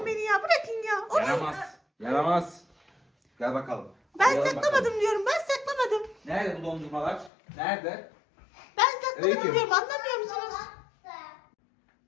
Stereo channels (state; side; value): drops out; right; at 7.3 s